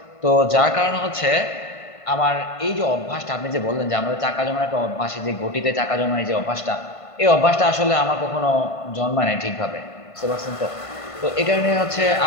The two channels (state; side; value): late; right; 1.5 ms